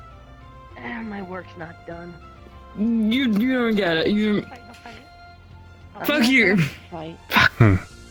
My work's not done. You don't get it. You. Fuck you. Fight.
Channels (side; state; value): both; identical; correlation 1.00